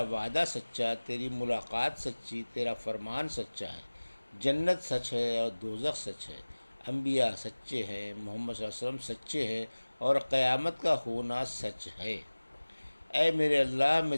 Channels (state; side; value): inverted; both; correlation -1.00